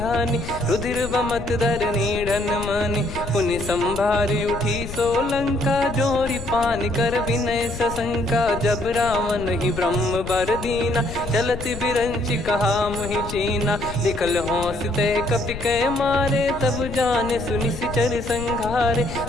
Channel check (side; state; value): left; noise; rumble, 10 dB below the sound